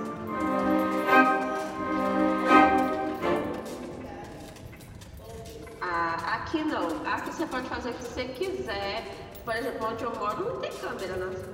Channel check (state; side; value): identical; both; correlation 1.00